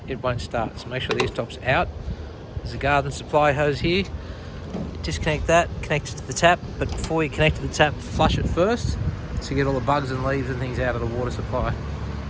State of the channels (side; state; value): both; identical; correlation 1.00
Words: it won't start, so make sure the e-stop's out. There's a garden supply hose here. Disconnect that, connect it to the tap, but before you connect to the tap, flush it first so you get all the bugs and leaves and things out of the water supply.